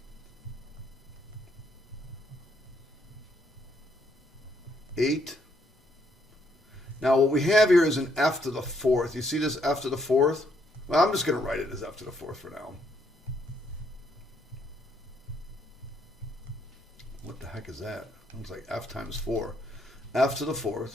8. Now what we have here is an F to the 4th. You see this F to the 4th? Well, I'm just going to write it as F to the 4th for now. What the heck is that? Looks like F times 4. F to the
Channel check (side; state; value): both; normal; correlation 0.72